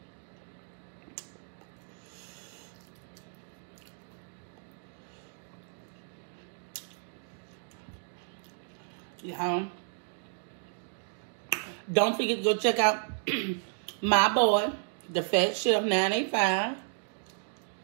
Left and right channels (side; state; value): left; silent; digital silence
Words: Y'all, don't forget to go check out my boy, the Fat Chef 985.